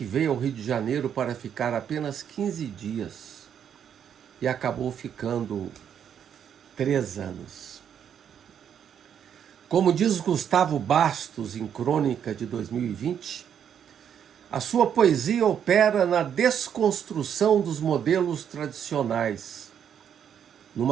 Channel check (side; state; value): left; quieter; 8.6 dB